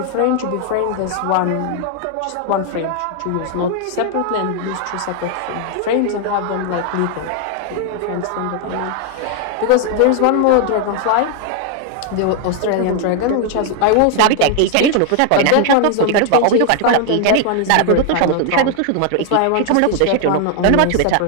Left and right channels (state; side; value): different; both; correlation 0.00